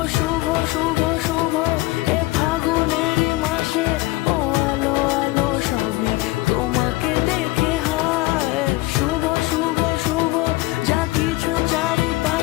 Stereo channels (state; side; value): quieter; right; 19.9 dB